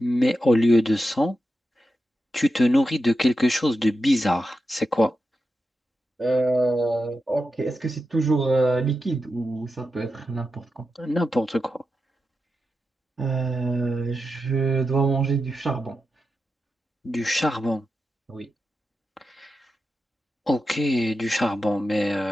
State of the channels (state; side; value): normal; both; correlation 0.89